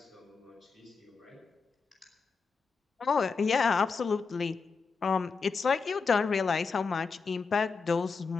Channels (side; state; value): right; quieter; 5.0 dB